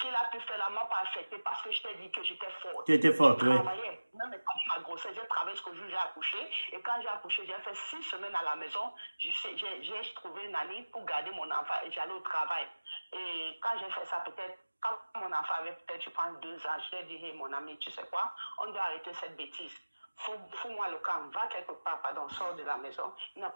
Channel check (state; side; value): inverted; both; correlation -1.00